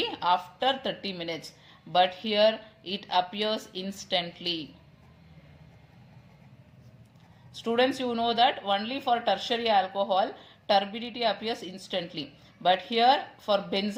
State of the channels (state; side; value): identical; both; correlation 1.00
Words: after 30 minutes. But here it appears instantly. Students, you know that only for tertiary alcohol, turbidity appears instantly. But here for